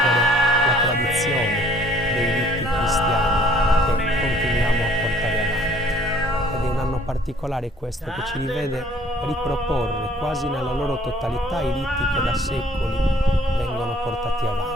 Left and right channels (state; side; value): normal; both; correlation 0.58